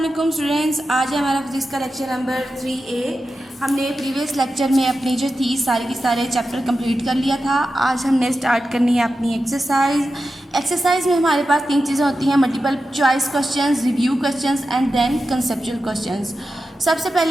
स्टूडेंट्स, आज है हमारा फिजिक्स का लेक्चर नंबर 3A। हमने प्रीवियस लेक्चर में अपनी जो थी सारे के सारे चैप्टर कंप्लीट कर लिया था। आज हमने स्टार्ट करनी है अपनी एक्सरसाइज में हमारे पास तीन चीज़ें होती हैं: multiple choice questions, review questions and then conceptual questions. सबसे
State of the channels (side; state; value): both; normal; correlation 0.91